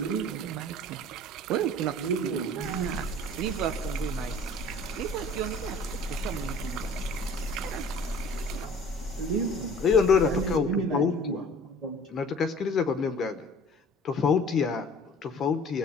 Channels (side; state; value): both; normal; correlation 0.47